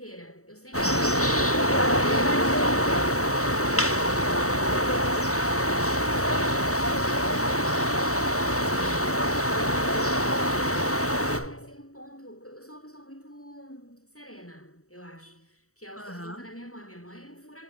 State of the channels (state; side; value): late; right; 0.65 ms